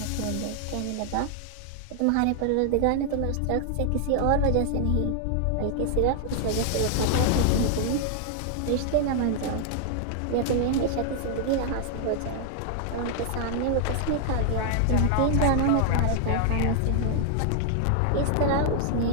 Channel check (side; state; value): both; different; correlation 0.00